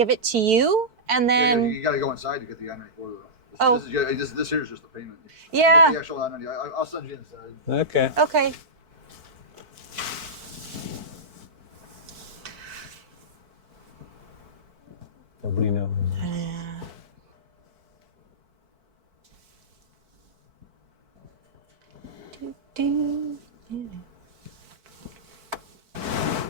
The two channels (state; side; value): late; left; 4.5 ms